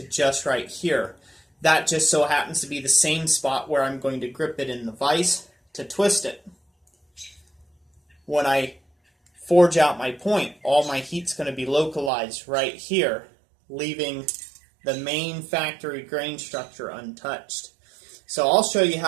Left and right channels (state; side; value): drops out; left; at 12.1 s